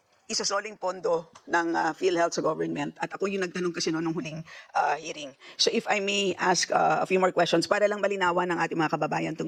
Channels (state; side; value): identical; both; correlation 1.00